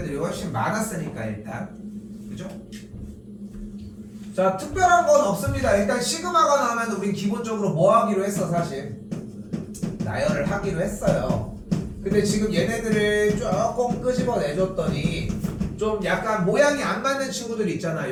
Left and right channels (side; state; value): both; identical; correlation 1.00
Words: 훨씬 많았으니까 일단 그죠? 자, 특별한 건 없습니다. 일단 시그마가 나오면 우린 기본적으로 뭐 하기로 했어 사실? 나열을 하기로 했어요. 근데 지금 얘네들을 조금 끄집어내줬더니 좀 약간 모양이 안 맞는 친구들 있잖아.